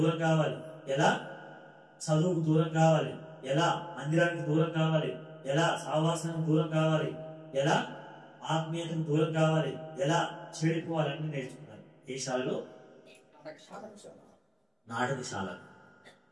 కావాలి, ఎలా చదువుకు దూరం కావాలి, ఎలా మందిరానికి దూరం కావాలి, ఎలా సహవాసానికి దూరం కావాలి, ఎలా ఆత్మీయతకు దూరం కావాలి, ఎలా చెడిపోవాలి అన్ని నేర్చుకున్నారు. ఏ శాలలో? నాటకశాల.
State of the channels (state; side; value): identical; both; correlation 1.00